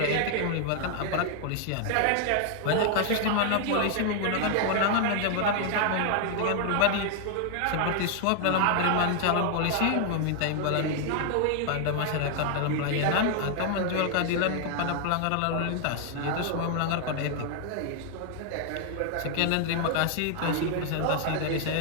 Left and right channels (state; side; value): different; both; correlation 0.00